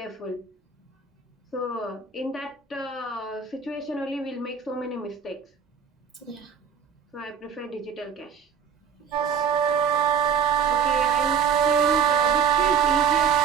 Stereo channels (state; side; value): quieter; left; 7.1 dB